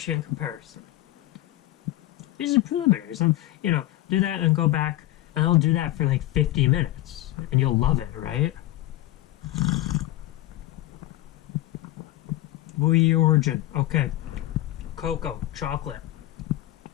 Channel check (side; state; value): right; quieter; 15.6 dB